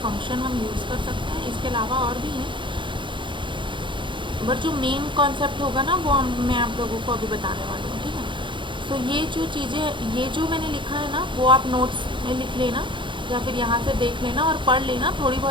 फंक्शन हम यूज़ कर सकते हैं। इसके अलावा और भी हैं, बट जो मेन कॉन्सेप्ट होगा ना वो मैं आप लोगों को अभी बताने वाली हूँ, ठीक है। सो ये जो चीज़ें, ये जो मैंने लिखा है ना, वो आप नोट्स में लिख लेना या फिर यहाँ से देख लेना और पढ़ लेना। थोड़ी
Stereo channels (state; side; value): late; left; 0.23 ms